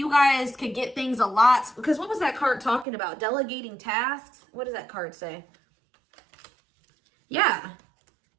guys could get things a lot. Because what was that card talking about? Delegating tasks? What does that card say? Yeah.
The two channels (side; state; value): left; drops out; at 2.9 s